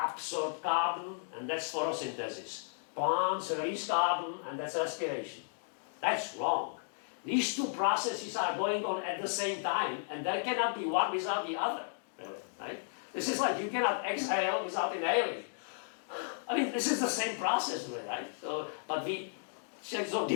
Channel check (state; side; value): silent; right; digital silence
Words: carbon, and that's photosynthesis. Plants release carbon, and that's respiration. That's wrong. These two processes are going on at the same time, and there cannot be one without the other, right? This is like you cannot exhale without inhaling. I mean, this is the same process, right? So, but we so